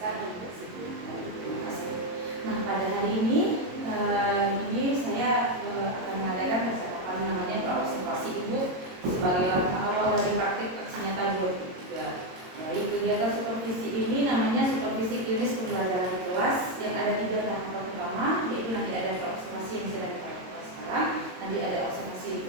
tidak sibuk. Baik, terima kasih. Nah, pada hari ini saya akan mengadakan percakapan namanya praobservasi Ibu sebagai langkah awal dari praktik aksi nyata 2003. Baik, kegiatan supervisi ini namanya supervisi klinis pembelajaran di kelas yang ada 3 tahapan utama, yaitu nanti ada praobservasi yang sedang kita lakukan sekarang, nanti ada observasi di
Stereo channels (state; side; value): late; left; 22 ms